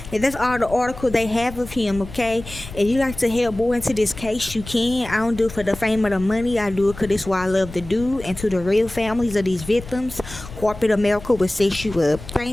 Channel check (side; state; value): left; noise; rumble, 14 dB below the sound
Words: And that's all the article they have of him, okay? If you like to help more into this case, you can. I don't do it for the fame or the money. I do it because it's what I love to do. And to the real families of these victims, corporate America will set you up.